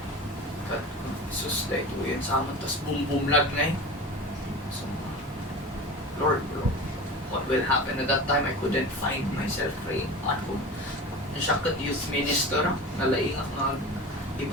But sus dahil ito yun sa amin. Tapos boom lag na eh. So Lord bro, what will happen? At that time, I couldn't find myself praying at home. Siya kat youth minister, nalaingak nga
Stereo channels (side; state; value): both; normal; correlation 0.32